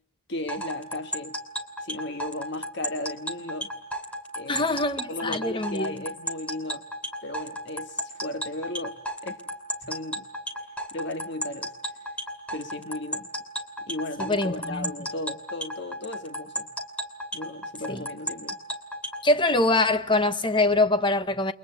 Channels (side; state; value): both; normal; correlation 0.10